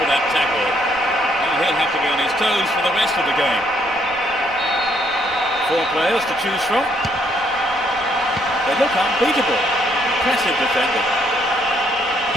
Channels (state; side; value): noise; right; rumble, 23 dB below the sound